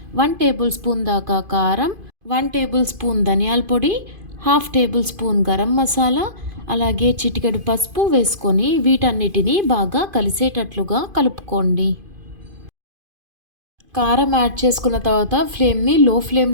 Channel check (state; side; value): late; left; 2.5 ms